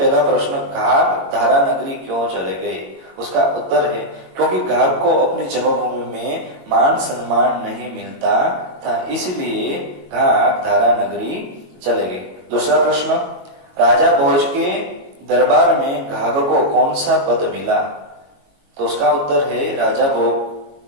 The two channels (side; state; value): left; late; 22 ms